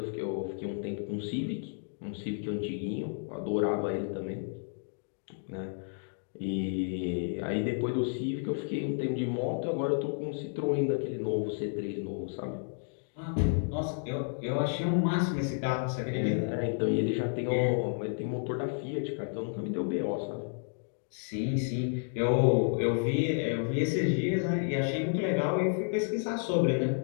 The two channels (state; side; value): silent; right; 57 dB below the other